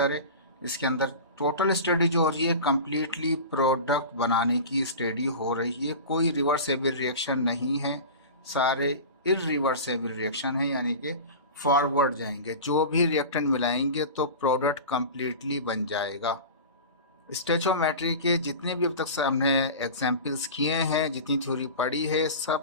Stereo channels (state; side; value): inverted; both; correlation -0.32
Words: है, इसके अंदर टोटल स्टडी जो हो रही है कम्प्लीटली प्रोडक्ट बनाने की स्टडी हो रही है। कोई रिवर्सेबल रिएक्शन नहीं है, सारे इरिवर्सेबल रिएक्शन है, यानी कि फॉरवर्ड जाएंगे। जो भी रिएक्टेंट मिलाएंगे तो प्रोडक्ट कम्प्लीटली बन जाएगा। स्टेचोमेट्री के जितने भी अब तक हमने एग्जाम्पल्स किए हैं, जितनी थ्योरी पढ़ी है,